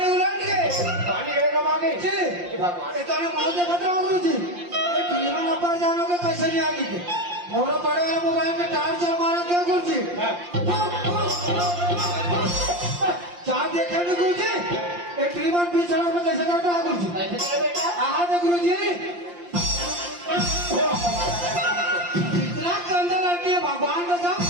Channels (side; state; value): left; late; 5.7 ms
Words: उलट गए पानी गिरेगा मांगे जी भगवान ये ताने मौत देखत रहा गुरुजी एक ट्रेन वाला ऊपर जानो के कैसे नहीं आगे थे मोरा पड़े वाला मोबाइल में टार्च चल मारा के गुरुजी चार देखे नहीं गुरुजी एक ट्रेन वाला बीच सड़क में कैसे जाता है गुरुजी कैसे करे बेटा आहा दे गुरुजी इतना कंधा लड़की है भगवान का सब